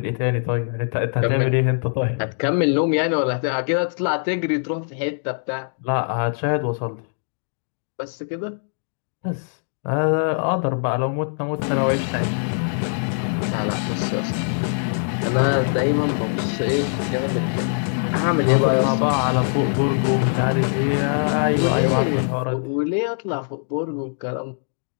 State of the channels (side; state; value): right; silent; digital silence